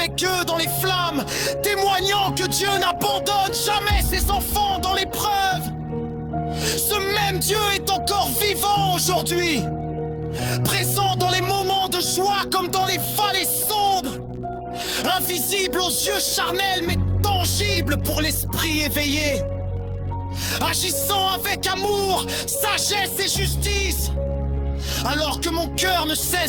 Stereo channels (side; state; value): both; identical; correlation 1.00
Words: eux dans les flammes, témoignant que Dieu n'abandonne jamais ses enfants dans l'épreuve. Ce même Dieu est encore vivant aujourd'hui, présent dans les moments de joie comme dans les vallées sombres, invisible aux yeux charnels mais tangible pour l'esprit éveillé, agissant avec amour, sagesse et justice, alors que mon cœur ne